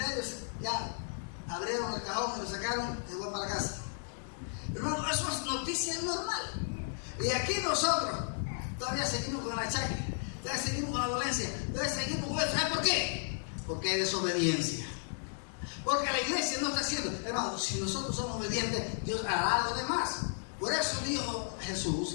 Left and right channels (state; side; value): silent; right; digital silence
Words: ya abrieron el cajón y lo sacaron y se fue para la casa. Hermano, eso es noticia normal. Y aquí nosotros todavía seguimos con el achaque, todavía seguimos con la dolencia, todavía seguimos con eso. ¿Sabes por qué? Porque hay desobediencia. Porque la iglesia no está haciendo. Hermano, si nosotros somos obedientes, Dios hará algo de más. Por eso dijo